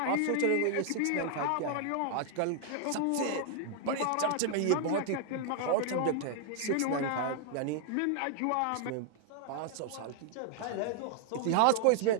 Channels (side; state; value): both; different; correlation 0.00